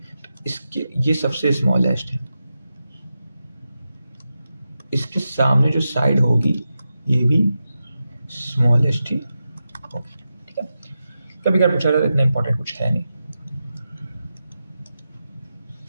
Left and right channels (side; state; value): both; inverted; correlation -0.90